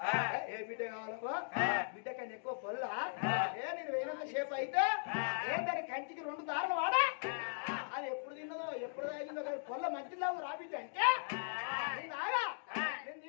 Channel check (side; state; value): right; silent; digital silence